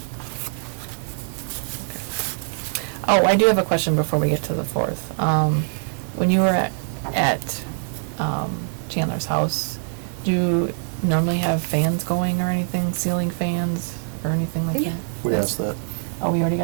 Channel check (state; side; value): silent; left; digital silence